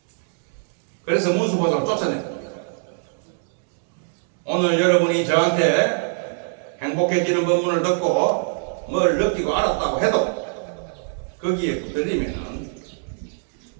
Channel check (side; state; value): left; silent; digital silence